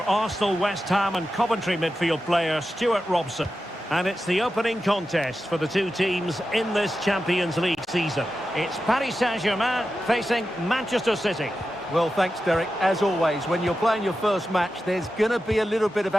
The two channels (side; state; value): both; normal; correlation 0.91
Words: Arsenal, West Ham and Coventry midfield player, Stuart Robson. And it's the opening contest for the two teams in this Champions League season. It's Paris Saint-Germain facing Manchester City. Well, thanks, Derek. As always, when you're playing your first match, there's going to be a little bit of